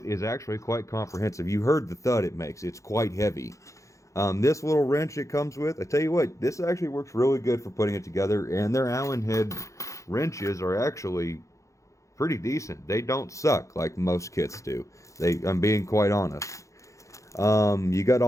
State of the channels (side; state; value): right; late; 0.15 ms